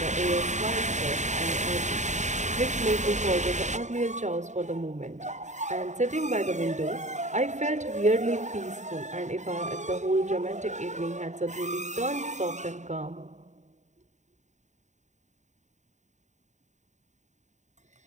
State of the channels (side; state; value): left; late; 0.34 ms